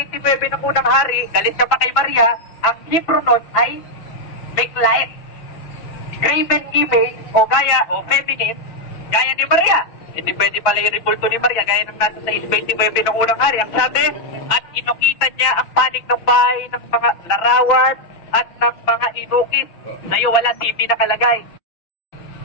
ng unang hari, galit ka pa kay Maria, ang Hebrew nun ay make light. Graven image o gaya o feminine, gaya ni Maria. Hindi pwede pala yung rebulto ni Maria gaya ng nasa sa 6:29 ng unang hari. Ang sabi, at inukita niya ang panig ng bahay ng mga larawan at ng mga inukit. Sa'yo wala TV nakalagay.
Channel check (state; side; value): late; right; 6.0 ms